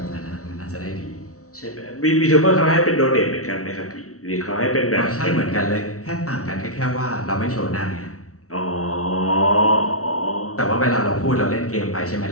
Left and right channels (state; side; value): late; right; 0.65 ms